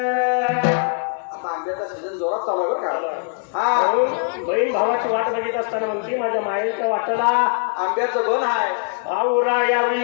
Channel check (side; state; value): right; silent; 65 dB below the other